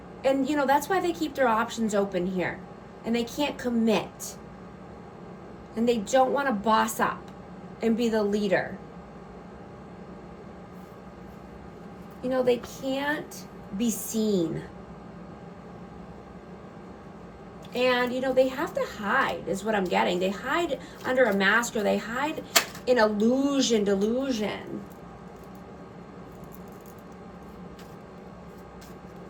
And, you know, that's why they keep their options open here. And they can't commit. And they don't want to boss up and be the leader. You know, they can't be seen. And, you know, they have to hide, is what I'm getting. They hide under a mask, or they hide in delusion.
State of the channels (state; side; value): identical; both; correlation 1.00